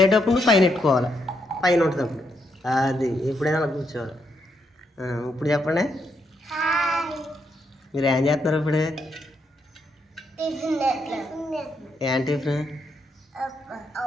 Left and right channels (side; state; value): both; normal; correlation 0.78